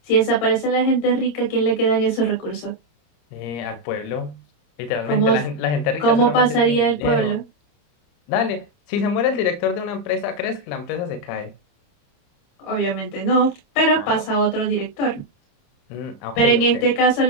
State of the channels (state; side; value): late; right; 30 ms